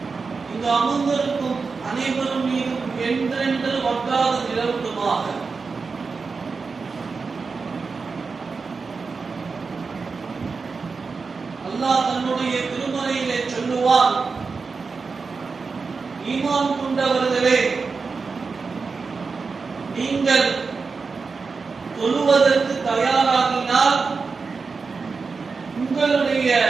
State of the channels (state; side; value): quieter; left; 4.7 dB